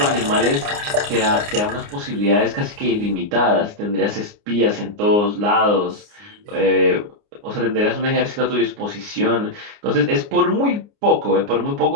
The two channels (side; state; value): left; late; 29 ms